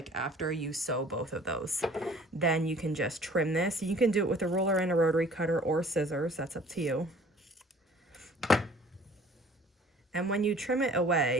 after you sew both of those. Then you can just trim this. You can do it with a ruler and a rotary cutter or scissors. That's up to you. And when you trim it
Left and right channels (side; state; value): both; normal; correlation 0.52